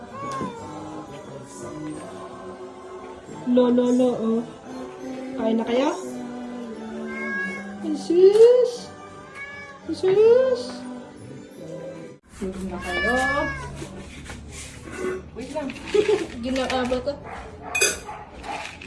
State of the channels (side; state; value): both; identical; correlation 1.00